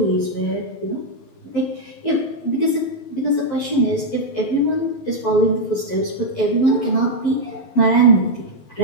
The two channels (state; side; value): late; right; 11 ms